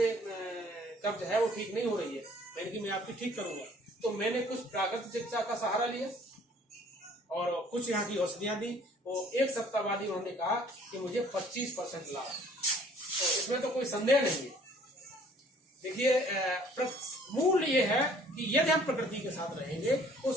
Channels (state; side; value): normal; both; correlation 0.56